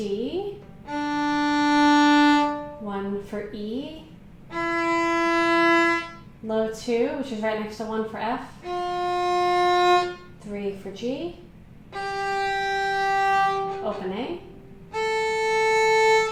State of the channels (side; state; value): both; identical; correlation 1.00